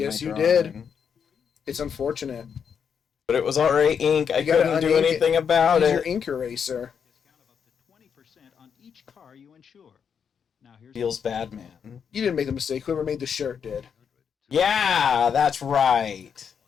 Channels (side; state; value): right; quieter; 7.1 dB